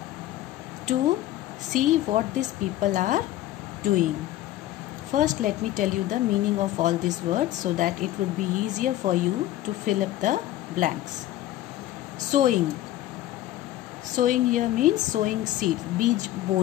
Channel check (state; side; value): quieter; right; 14.2 dB